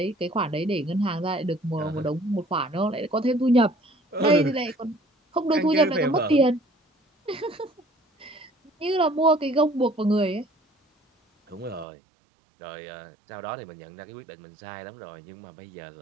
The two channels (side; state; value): left; drops out; at 11.9 s